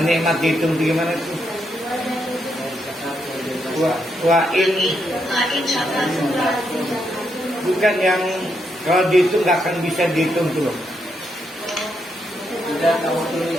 nikmat dihitung gimana tuh? Bukan yang kalau dihitung nggak akan bisa dihitung tuh.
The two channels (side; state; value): both; normal; correlation 0.79